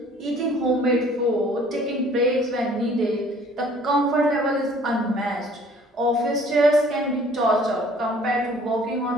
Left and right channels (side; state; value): both; normal; correlation 0.55